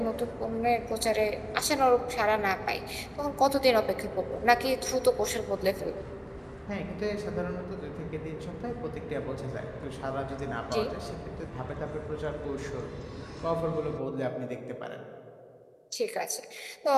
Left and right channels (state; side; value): identical; both; correlation 1.00